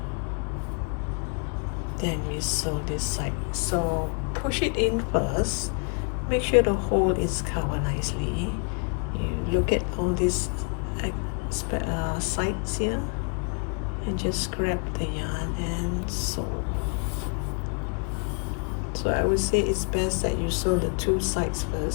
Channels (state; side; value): quieter; right; 37.6 dB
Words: Then we sew this side. So push it in first, make sure the hole is covered nicely. You look at all these sides here and just grab the yarn and sew. So I would say it's best that you sew the two sides